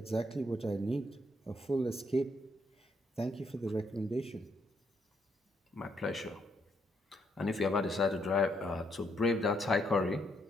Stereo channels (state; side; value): normal; both; correlation 0.74